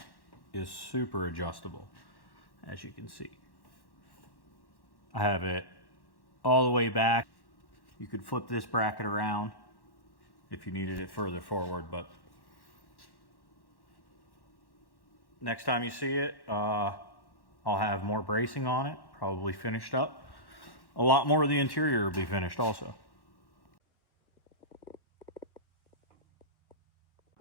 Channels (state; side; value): late; right; 1.1 ms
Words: is super adjustable, as you can see. I have it all the way back. You could flip this bracket around if you needed it further forward, but next time you see it, I'll have more bracing on it, probably finished up. A lot more of the interior will be finished also.